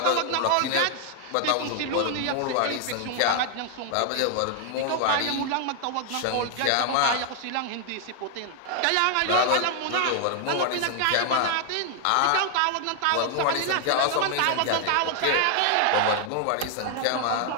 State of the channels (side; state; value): both; different; correlation 0.00